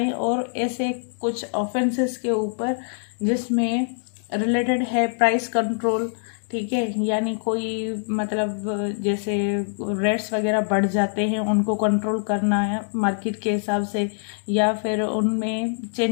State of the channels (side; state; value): right; silent; digital silence